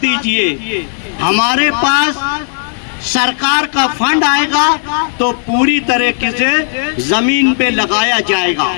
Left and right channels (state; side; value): silent; right; digital silence